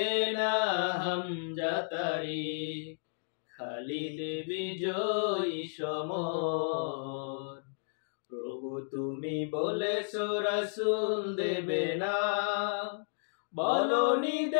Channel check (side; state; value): right; silent; digital silence